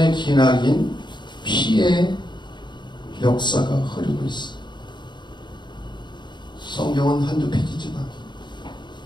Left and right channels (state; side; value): late; right; 0.22 ms